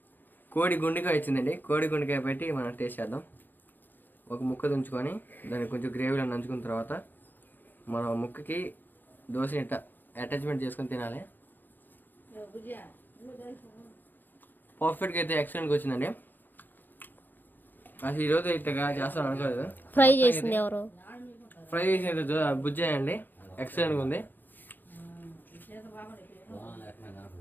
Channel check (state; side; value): late; right; 0.090 ms